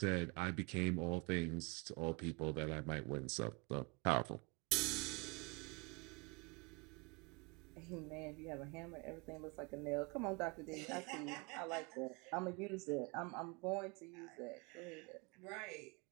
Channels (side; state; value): left; quieter; 29.2 dB